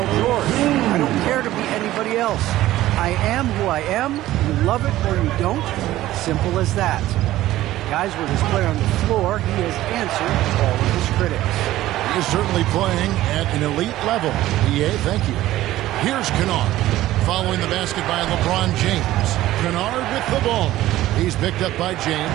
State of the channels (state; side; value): quieter; left; 15.1 dB